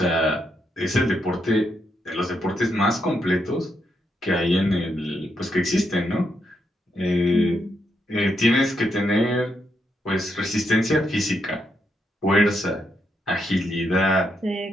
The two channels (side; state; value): both; normal; correlation 0.80